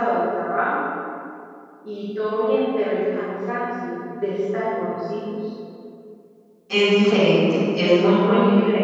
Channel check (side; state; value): both; identical; correlation 1.00